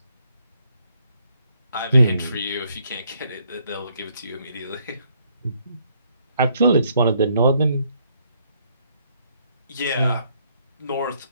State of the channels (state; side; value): inverted; both; correlation -0.70